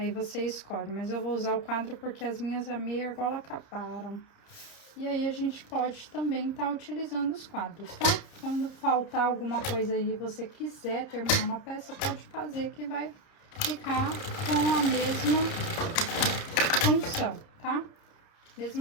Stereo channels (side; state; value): right; late; 30 ms